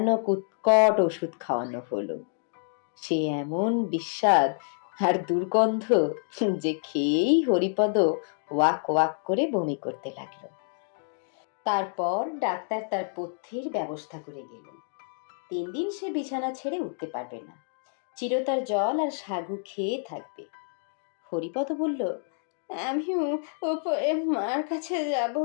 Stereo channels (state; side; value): silent; right; digital silence